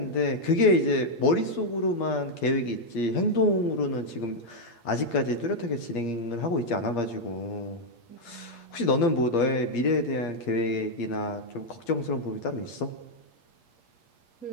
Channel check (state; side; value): late; right; 8.5 ms